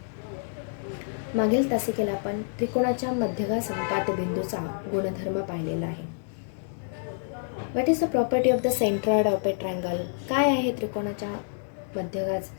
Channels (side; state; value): right; silent; digital silence